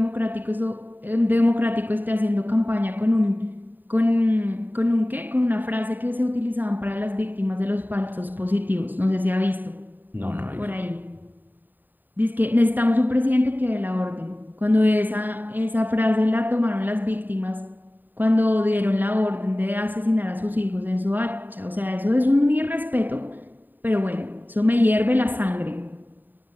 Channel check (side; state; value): left; late; 0.090 ms